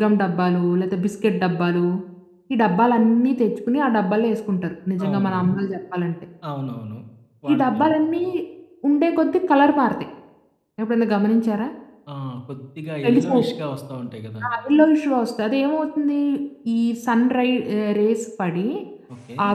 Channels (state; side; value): identical; both; correlation 1.00